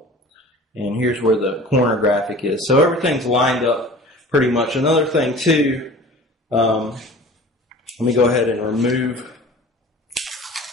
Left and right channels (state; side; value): normal; both; correlation 0.42